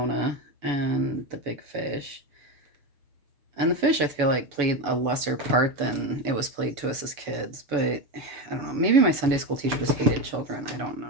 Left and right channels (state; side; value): late; left; 7.0 ms